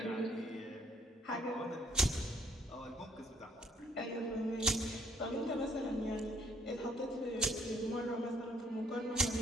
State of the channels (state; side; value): normal; both; correlation 0.64